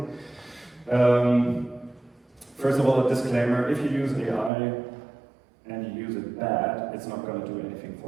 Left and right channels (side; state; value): left; drops out; at 4.5 s